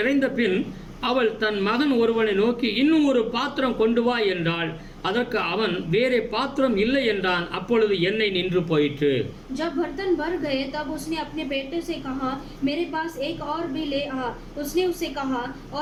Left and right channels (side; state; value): both; identical; correlation 1.00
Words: பின் அவள் தன் மகன் ஒருவனை நோக்கி, இன்னும் ஒரு பாத்திரம் கொண்டு வா என்றாள். அதற்கு அவன், வேறே பாத்திரம் இல்லை என்றான். அப்பொழுது எண்ணெய் நின்று போயிற்று. जब बर्तन भर गए तब उसने अपने बेटे से कहा, मेरे पास एक और भी ले आ. उसने उससे कहा,